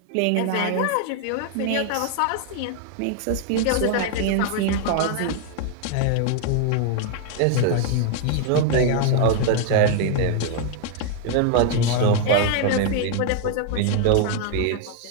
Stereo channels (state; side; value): different; both; correlation 0.00